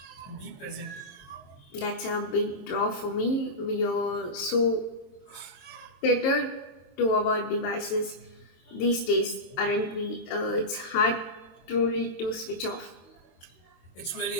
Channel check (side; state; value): right; late; 22 ms